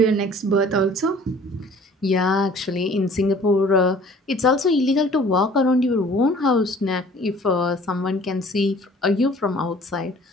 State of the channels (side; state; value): both; normal; correlation 0.52